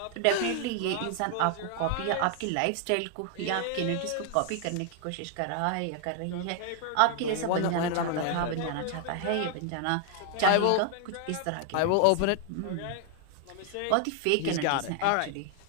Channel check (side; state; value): both; different; correlation 0.00